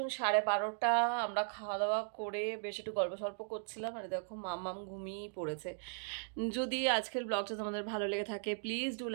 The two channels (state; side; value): silent; left; digital silence